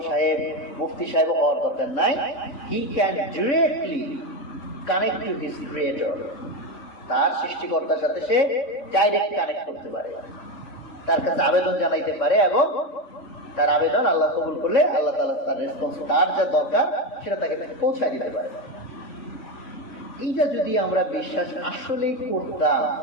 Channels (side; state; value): right; late; 3.6 ms